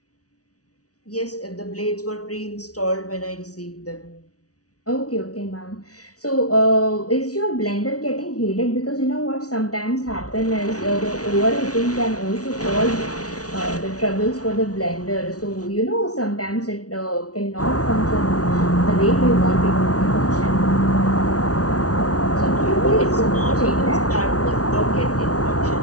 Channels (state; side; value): late; right; 0.68 ms